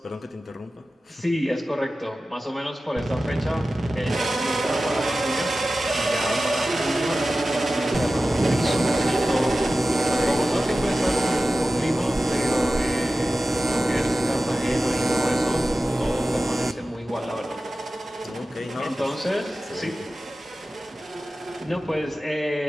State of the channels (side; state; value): both; normal; correlation 0.95